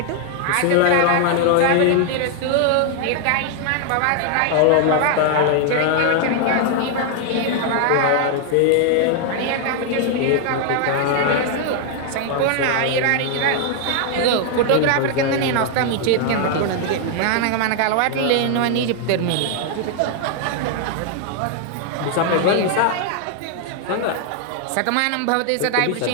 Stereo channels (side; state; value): both; different; correlation 0.00